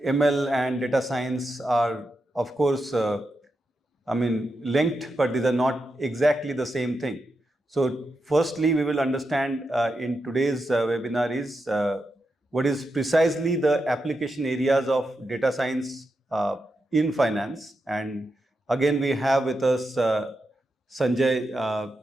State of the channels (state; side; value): normal; both; correlation 0.87